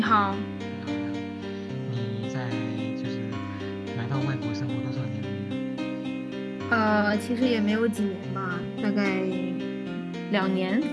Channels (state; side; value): identical; both; correlation 1.00